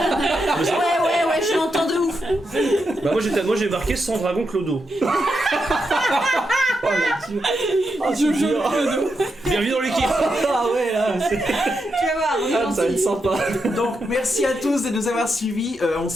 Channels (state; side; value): normal; both; correlation 0.84